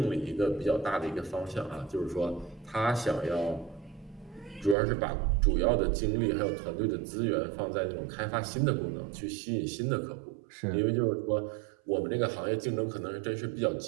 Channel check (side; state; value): left; drops out; at 4.8 s